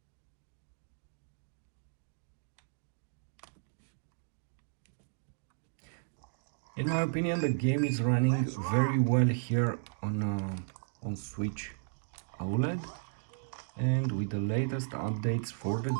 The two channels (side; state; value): left; silent; digital silence